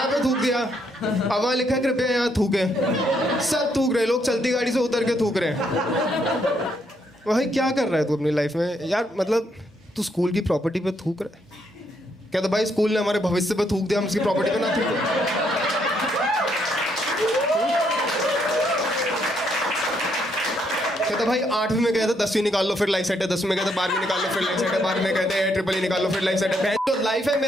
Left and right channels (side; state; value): both; normal; correlation 0.74